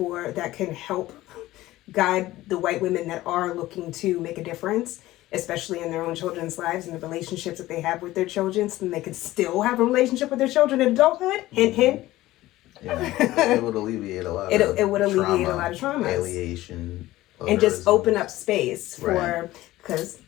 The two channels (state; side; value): quieter; right; 16.6 dB